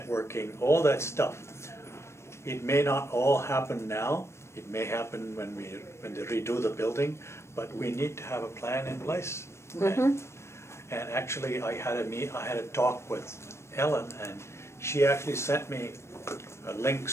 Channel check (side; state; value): right; late; 0.13 ms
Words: all that stuff. It may not all happen now. It may happen when they redo the building, but we need to have a plan in place. And actually, I had a talk with Ellen, and she actually sent me